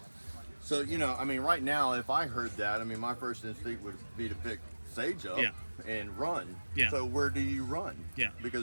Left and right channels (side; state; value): both; inverted; correlation -1.00